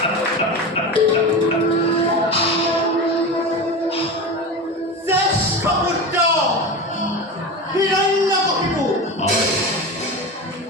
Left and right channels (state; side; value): normal; both; correlation 0.25